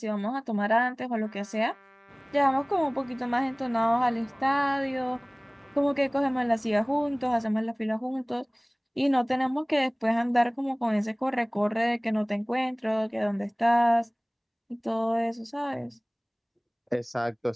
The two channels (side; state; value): both; identical; correlation 1.00